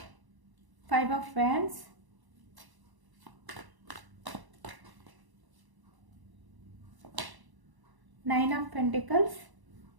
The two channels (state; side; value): late; left; 1.0 ms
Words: 5 of Wands, Nine of Pentacles,